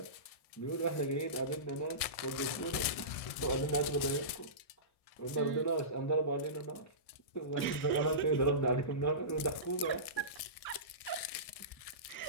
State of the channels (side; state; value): right; late; 1.6 ms